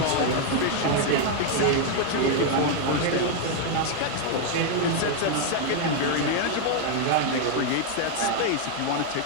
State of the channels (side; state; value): both; different; correlation 0.00